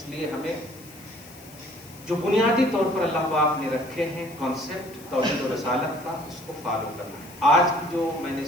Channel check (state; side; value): noise; left; hiss, 21 dB below the sound